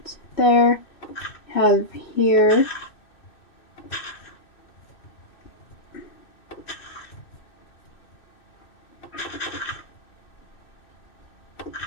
there. Have here.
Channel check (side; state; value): right; late; 2.6 ms